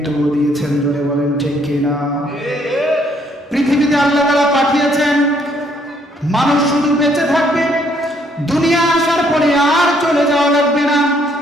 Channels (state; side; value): normal; both; correlation 0.67